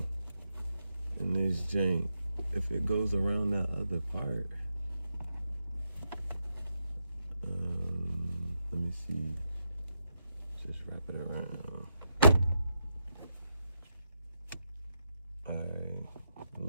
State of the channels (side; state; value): both; inverted; correlation -0.83